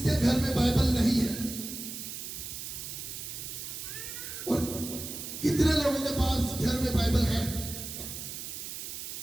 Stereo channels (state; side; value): noise; right; hiss, 8 dB below the sound